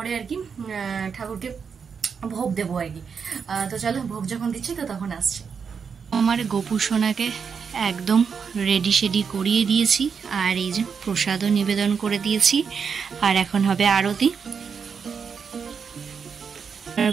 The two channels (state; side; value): quieter; left; 6.2 dB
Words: আর কি ঠাকুরকে ভোগ দেবো আর কি। তো চলো ভোগ যখন দিচ্ছি তো তখন আসছে। আমার গোপুসোনাকে একদম রেডি শেডি করিয়ে দিয়েছি, আর এই যে প্রসাদও নিবেদন করে দিয়েছি, আর এখন হবে আরতি। আর